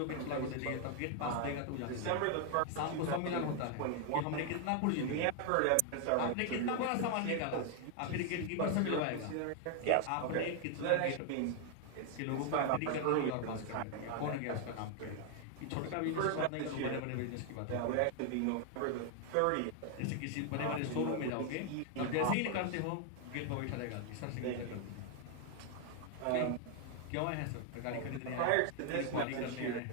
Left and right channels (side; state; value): both; different; correlation 0.00